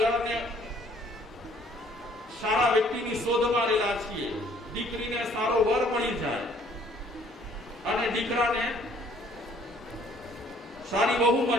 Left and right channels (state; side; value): normal; both; correlation 0.59